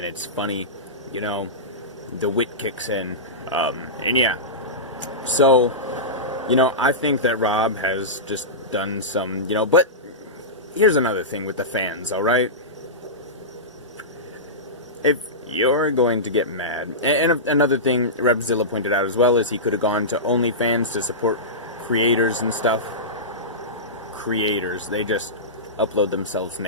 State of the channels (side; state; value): both; normal; correlation -0.17